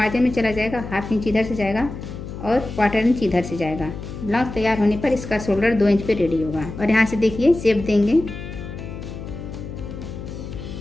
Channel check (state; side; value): noise; left; hum, 10 dB below the sound